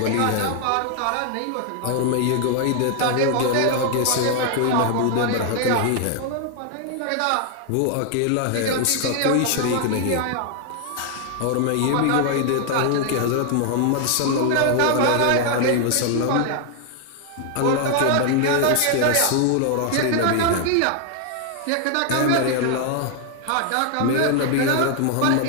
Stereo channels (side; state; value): both; different; correlation 0.00